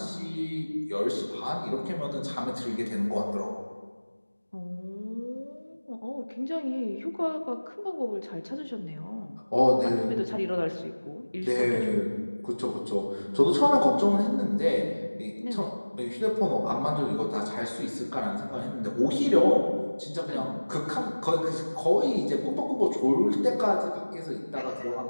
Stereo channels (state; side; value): inverted; both; correlation -1.00